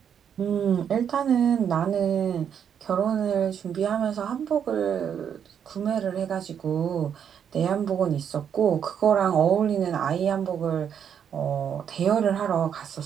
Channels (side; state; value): left; quieter; 8.2 dB